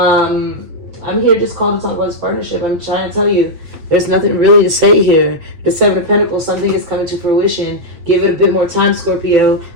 here just called to talk about this partnership. I'm trying to tell you, there's nothing really to say here. The 7 of Pentacles, something is coming to fruition. Give it a bit more time, Scorpio.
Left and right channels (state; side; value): late; left; 8.3 ms